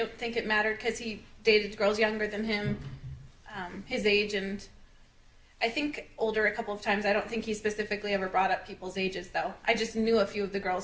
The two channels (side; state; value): both; identical; correlation 1.00